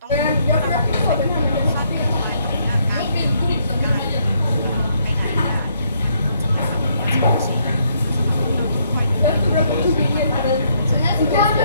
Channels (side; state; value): both; inverted; correlation -0.71